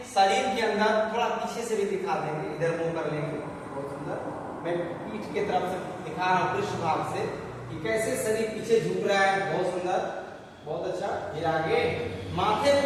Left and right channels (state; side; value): identical; both; correlation 1.00